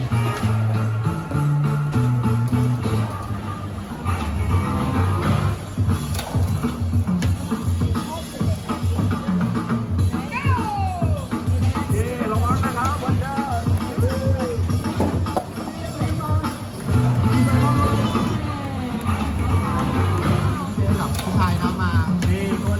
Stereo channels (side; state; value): both; identical; correlation 1.00